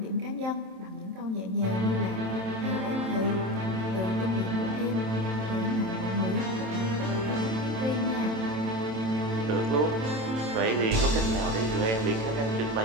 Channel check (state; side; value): late; left; 27 ms